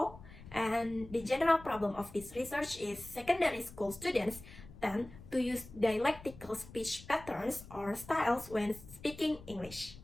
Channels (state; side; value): noise; left; rumble, 17 dB below the sound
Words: and the general problem of this research is secondary school students tend to use dialectical speech patterns or styles when speaking English.